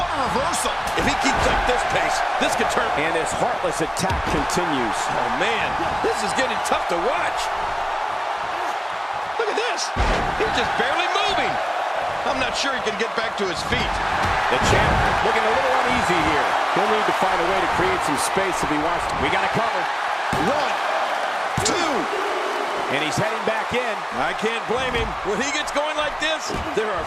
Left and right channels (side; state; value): both; identical; correlation 1.00